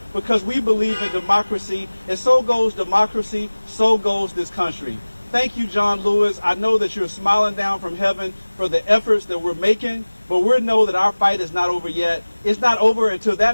because we believe in democracy, and so goes democracy, so goes this country. Thank you, John Lewis. I know that you're smiling down from heaven for the efforts that we're making, but we know that our fight is not over yet. It's not over until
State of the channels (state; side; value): inverted; both; correlation -1.00